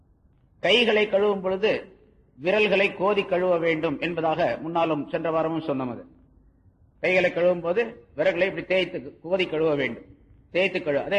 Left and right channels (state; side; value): identical; both; correlation 1.00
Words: கைகளை கழுவும் பொழுது விரல்களை கோதி கழுவ வேண்டும் என்பதாக முன்னாலும் சென்ற வாரமும் சொன்னது. கைகளை கழுவும் போது விரல்களை இப்படி தேய்த்து கோதி கழுவ வேண்டும், தேய்த்து கழுவ.